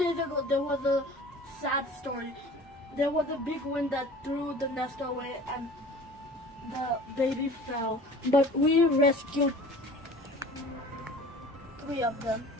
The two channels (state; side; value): normal; both; correlation 0.44